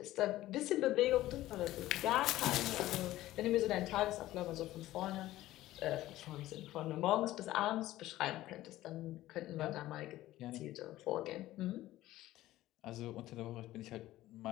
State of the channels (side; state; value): right; quieter; 15.5 dB